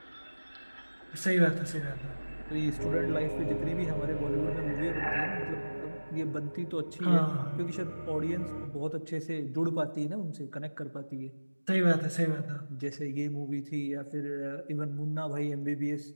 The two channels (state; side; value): inverted; both; correlation -1.00